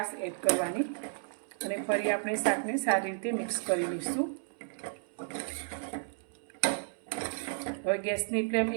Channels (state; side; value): silent; left; 56 dB below the other